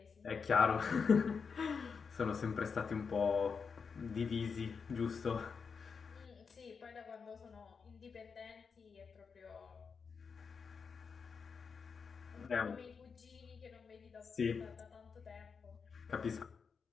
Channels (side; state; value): right; quieter; 5.7 dB